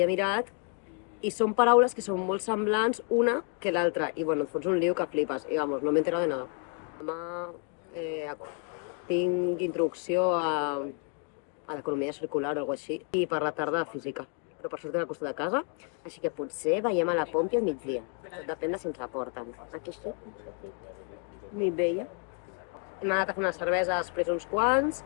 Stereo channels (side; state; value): right; quieter; 38.6 dB